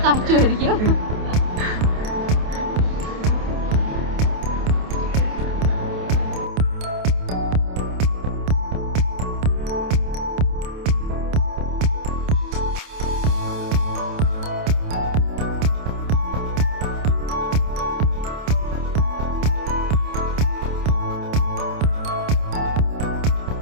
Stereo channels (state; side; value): late; left; 28 ms